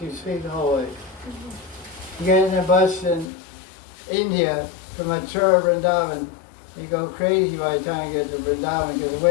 You sleep the whole way. You get in a bus in India from Mathura, Vrindavan, you go crazy by the time you get to Vrindavan because the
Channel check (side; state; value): right; drops out; at 3.3 s